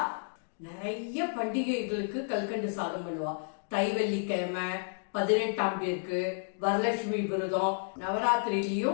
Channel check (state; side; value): silent; right; digital silence